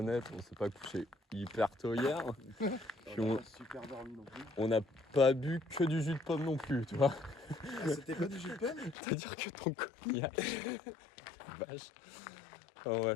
on s'est pas couché hyper tôt hier. Puis On a super dormi non plus. on n'a pas bu que du jus de pomme non plus, tu vois. Ah, c'était pas du jus de pomme? C'est-à-dire que ton cognac. Vache. Oh,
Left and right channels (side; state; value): right; drops out; at 9.0 s